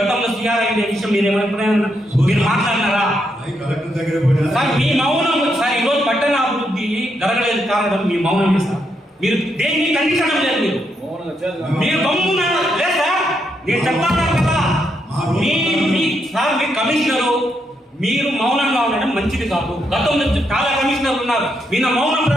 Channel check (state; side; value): normal; both; correlation 0.79